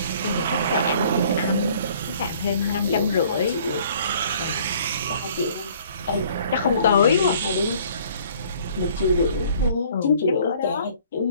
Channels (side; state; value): both; inverted; correlation -0.56